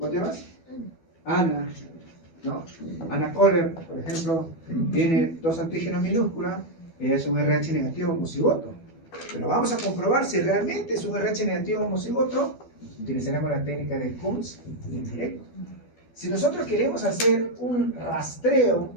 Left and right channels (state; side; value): late; right; 12 ms